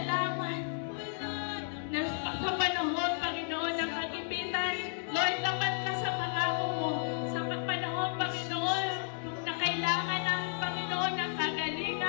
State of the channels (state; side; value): silent; right; digital silence